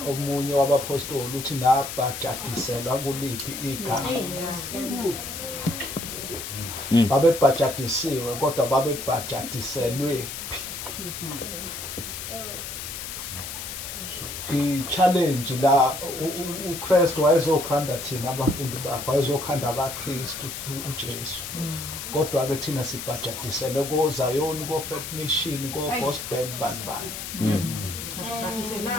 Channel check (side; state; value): left; noise; hiss, 7 dB below the sound